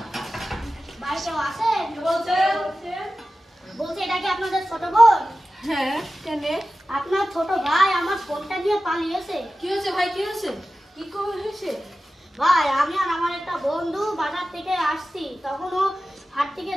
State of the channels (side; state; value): both; normal; correlation 0.94